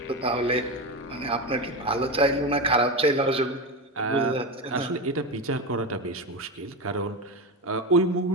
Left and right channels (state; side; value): normal; both; correlation 0.18